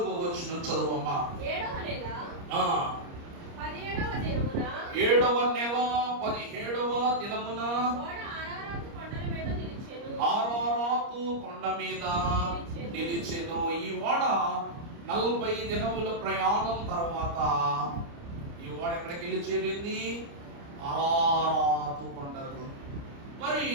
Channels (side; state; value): left; late; 29 ms